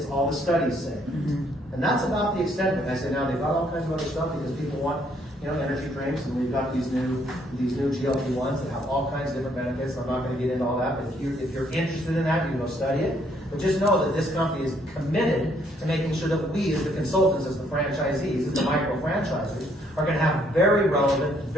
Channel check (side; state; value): both; normal; correlation 0.68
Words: all the studies saying it. And that's about the extent of it. I say now they've got all kinds of other stuff because people want, energy drinks, and we've got these new GLP-1s that have all kinds of different benefits. I'm not going to get into all that, but if you're interested in that, you can go study it. But just know that this company is committed to making sure that we, as the consultants, as the franchisees, as the micro-franchisers, are going to have very relevant,